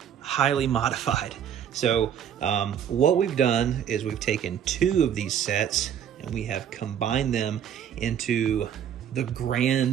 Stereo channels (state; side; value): quieter; left; 9.1 dB